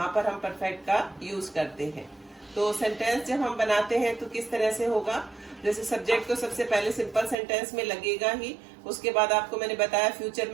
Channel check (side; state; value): left; drops out; at 7.4 s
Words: पर हम परफेक्ट का यूज करते हैं। तो सेंटेंस जब हम बनाते हैं तो किस तरह से होगा? जैसे सब्जेक्ट तो सबसे पहले सिंपल सेंटेंस में लगेगा ही। उसके बाद आपको मैंने बताया फ्यूचर